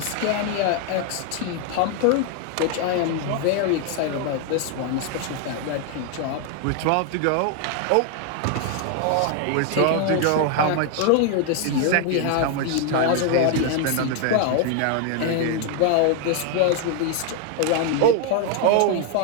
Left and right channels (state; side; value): different; both; correlation 0.01